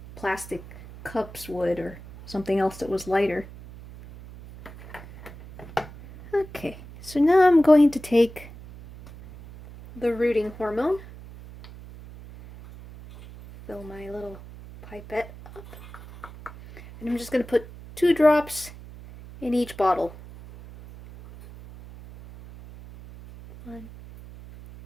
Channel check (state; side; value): noise; right; hum, 17 dB below the sound